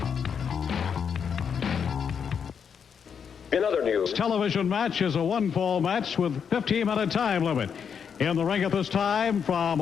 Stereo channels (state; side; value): quieter; right; 7.1 dB